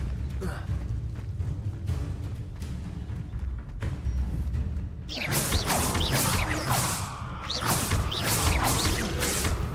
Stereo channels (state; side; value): identical; both; correlation 1.00